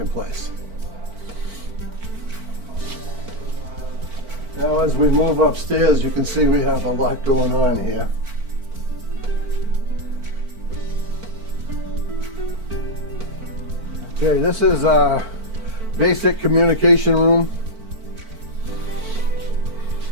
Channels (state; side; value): late; left; 4.5 ms